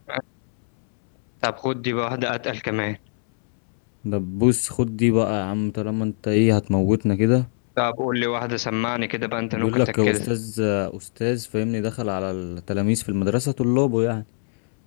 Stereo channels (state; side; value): silent; right; 64 dB below the other